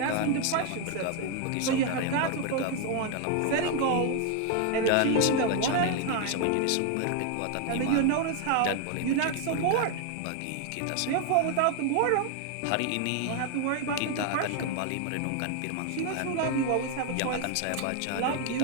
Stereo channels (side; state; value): both; different; correlation 0.01